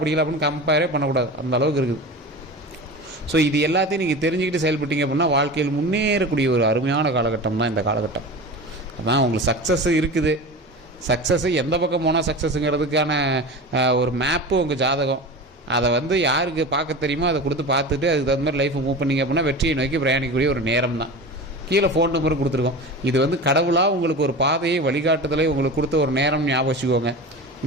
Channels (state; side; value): normal; both; correlation 0.30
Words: படிக்கல அப்படின்னு கம்பேரே பண்ணக்கூடாது, அந்த அளவுக்கு இருக்குது. ஸோ இது எல்லாத்தையும் நீங்கள் தெரிஞ்சுக்கிட்டு செயல்பட்டீங்க அப்படின்னா வாழ்க்கையில் முன்னேறக்கூடிய ஒரு அருமையான காலகட்டம் தான் இந்த காலகட்டம். அதான் உங்களுக்கு சக்ஸஸ் இருக்குது. சக்ஸஸ்ஸு எந்த பக்கம் போனால் சக்ஸஸுங்கிறதுக்கான ஒரு மேப்பு உங்கள் ஜாதகம். அதை வந்து யாருக்கு பார்க்க தெரியுமோ அதை கொடுத்து பார்த்துட்டு அதுக்கு தகுந்த மாதிரி லைஃப்பை மூவ் பண்ணிங்க அப்படின்னா வெற்றியை நோக்கி பிரயாணிக்கக்கூடிய ஒரு நேரம் தான். கீழே ஃபோன் நம்பர் கொடுத்துருக்கோம். இது வந்து கடவுளாக உங்களுக்கு ஒரு பாதையை வழிகாட்டுதலை உங்களுக்கு கொடுத்த ஒரு நேரம் ஞாபகம் வச்சுக்கோங்க.